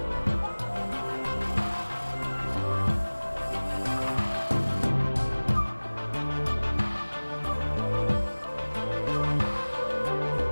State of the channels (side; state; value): both; inverted; correlation -1.00